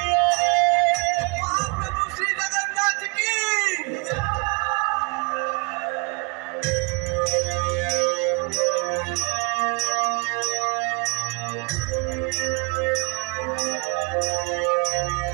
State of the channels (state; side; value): quieter; left; 30.2 dB